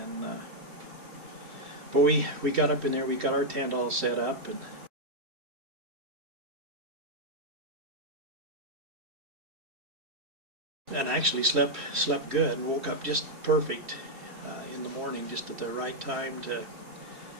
but we got up in there. We got our tent all set up, and actually slept good and woke up just perfect in the morning, just at the right time to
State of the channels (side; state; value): left; late; 3.1 ms